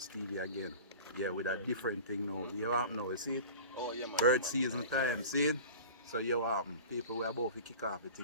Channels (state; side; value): inverted; both; correlation -0.37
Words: TV again. Yeah, with a different thing now. You happen now, you see it? Oh, yeah, man. Bird season time, see it? So you happen. People, we are about to kick off the